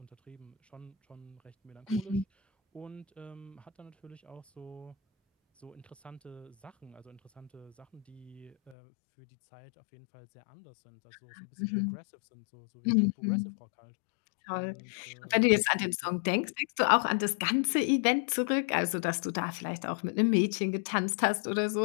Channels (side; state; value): right; drops out; at 8.8 s